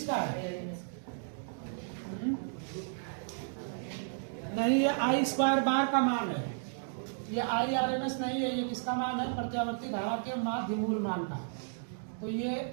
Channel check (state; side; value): silent; left; digital silence